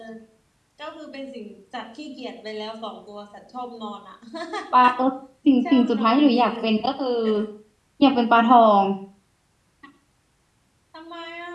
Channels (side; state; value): both; identical; correlation 1.00